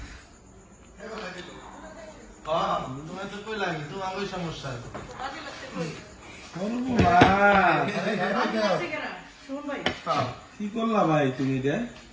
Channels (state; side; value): identical; both; correlation 1.00